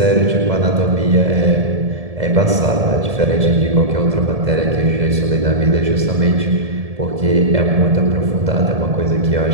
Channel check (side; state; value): left; late; 1.7 ms